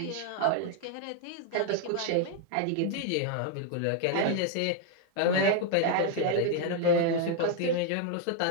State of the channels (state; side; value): different; both; correlation 0.00